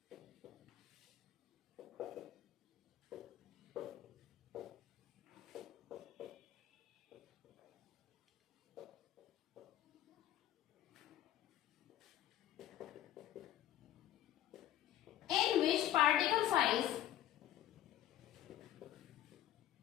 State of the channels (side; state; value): right; quieter; 12.5 dB